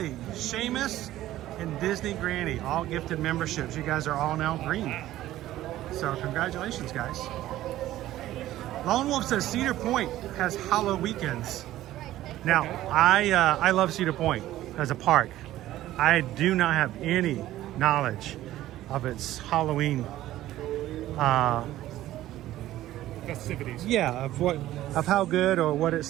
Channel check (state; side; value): quieter; left; 14.5 dB